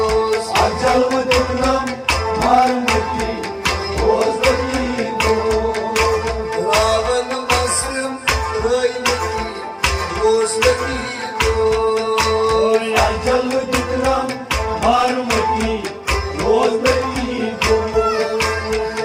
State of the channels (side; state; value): both; identical; correlation 1.00